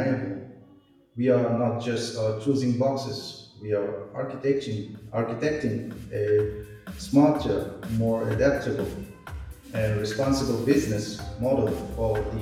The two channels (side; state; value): both; identical; correlation 1.00